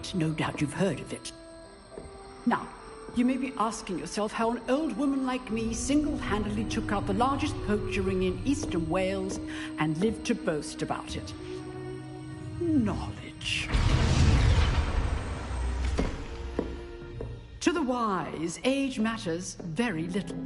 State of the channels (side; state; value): both; identical; correlation 1.00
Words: No doubt you've heard of it. Now, you may be asking yourself how an old woman like me single-handedly took out the largest poacher ring in eastern Wales and lived to boast about it. Knowledge. To the wise, age matters very little.